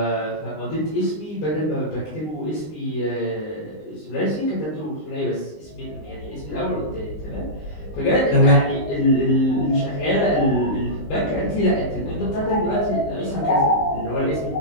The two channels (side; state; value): right; late; 19 ms